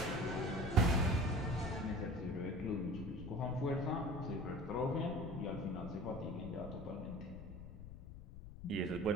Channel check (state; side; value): noise; left; rumble, 12 dB below the sound